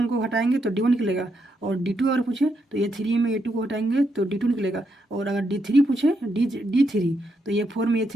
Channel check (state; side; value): normal; both; correlation 0.80